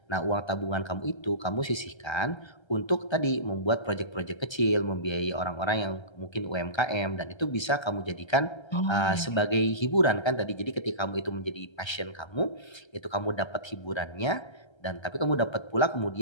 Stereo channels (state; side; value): late; right; 1.3 ms